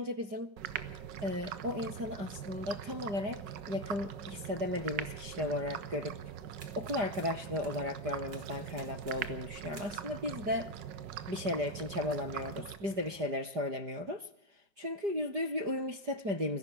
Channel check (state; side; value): late; left; 5.0 ms